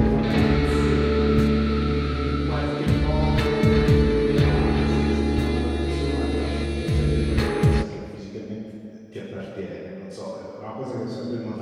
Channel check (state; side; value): identical; both; correlation 1.00